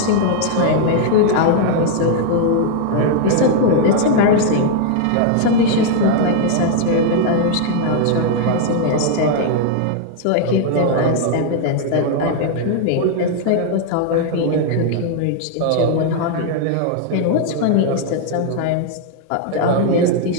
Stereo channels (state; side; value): different; both; correlation 0.00